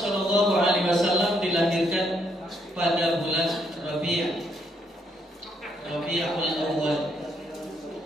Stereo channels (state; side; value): normal; both; correlation 0.73